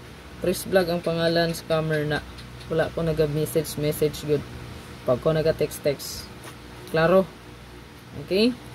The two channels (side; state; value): both; identical; correlation 1.00